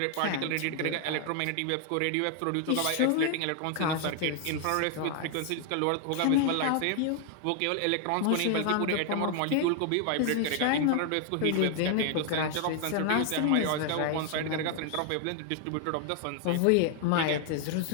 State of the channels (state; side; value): different; both; correlation 0.00